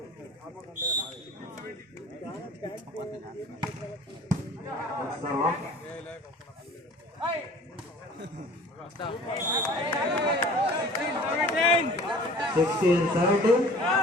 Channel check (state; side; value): normal; both; correlation 0.46